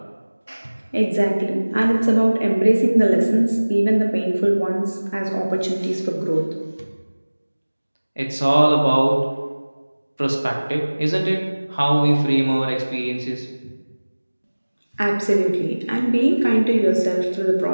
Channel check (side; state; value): both; inverted; correlation -1.00